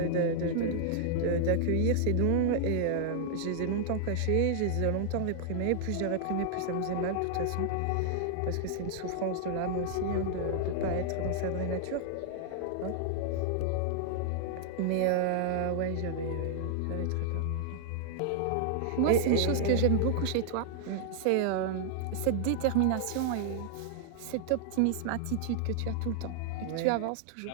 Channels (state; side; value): different; both; correlation -0.01